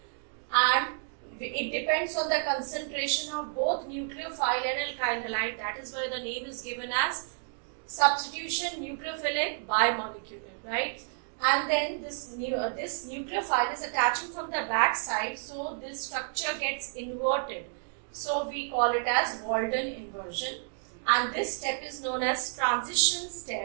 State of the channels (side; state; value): left; silent; digital silence